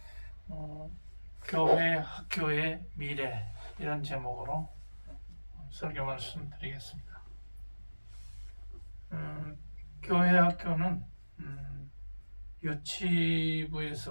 교회 학교의 미래 이런 제목으로 설교 말씀 드리겠습니다. 교회 학교는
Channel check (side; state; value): both; inverted; correlation -1.00